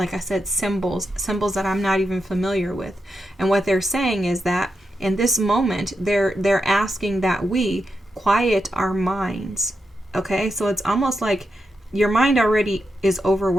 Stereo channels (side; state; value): both; normal; correlation 0.86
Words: I said, symbols that I'm not even familiar with. And what they're saying is that in this moment, they're asking that we quiet our minds. Okay, so it's almost like your mind already is